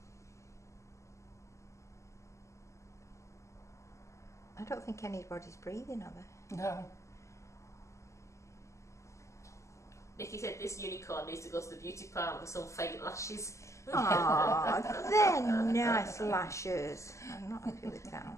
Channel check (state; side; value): late; right; 0.14 ms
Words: I don't think anybody's breathing, are they? No. Nikki said this unicorn needs to go to the beauty parlour for some fake lashes. Aw, they're nice lashes. I'm not happy with